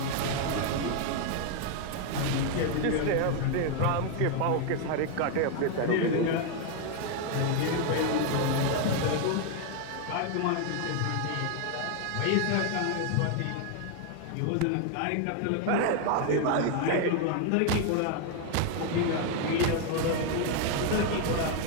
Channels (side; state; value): both; different; correlation 0.01